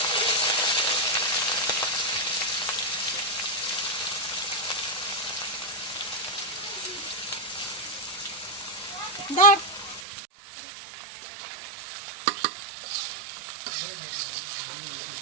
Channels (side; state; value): left; drops out; at 10.0 s